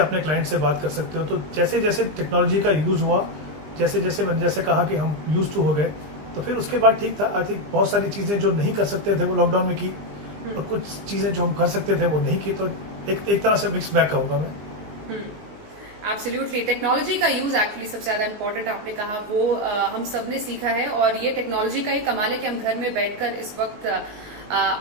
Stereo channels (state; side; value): late; left; 19 ms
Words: क्लाइंट से बात कर सकते हो। तो जैसे जैसे टेक्नोलॉजी का यूज हुआ, जैसे जैसे मैंने जैसे कहा कि हम यूज टू हो गए, तो फिर उसके बाद ठीक था। आई थिंक बहुत सारी चीजें जो नहीं कर सकते थे वो लॉकडाउन में की, और कुछ चीजें जो हम कर सकते थे वो नहीं की। तो एक तरह से मिक्स बैग कहूंगा मैं। एब्सोल्युटली, टेक्नोलॉजी का यूज एक्चुअली सबसे ज्यादा इंपॉर्टेंट आपने कहा, वो हम सब ने सीखा है। और ये टेक्नोलॉजी का ही कमाल है कि हम घर में बैठकर इस वक्त